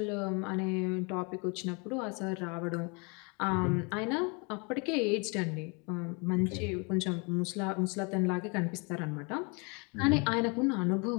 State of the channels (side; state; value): right; quieter; 32.1 dB